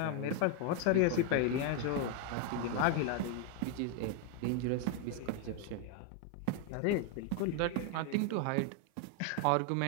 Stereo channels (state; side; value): different; both; correlation 0.00